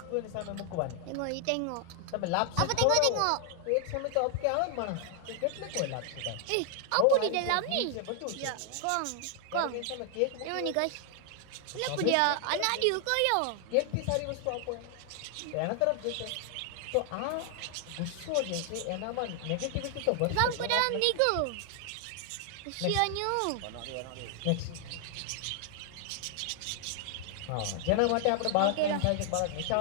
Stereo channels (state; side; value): different; both; correlation 0.00